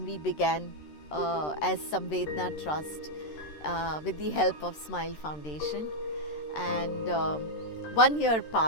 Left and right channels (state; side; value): late; right; 13 ms